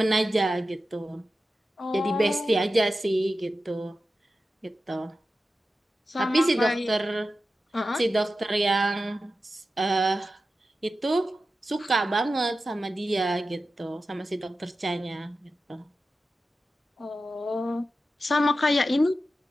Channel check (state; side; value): normal; both; correlation 0.92